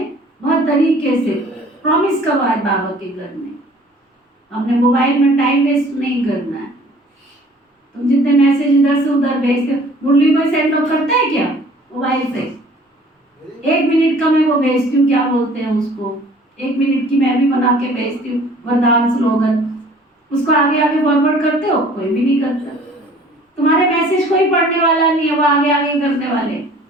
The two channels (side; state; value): both; normal; correlation 0.52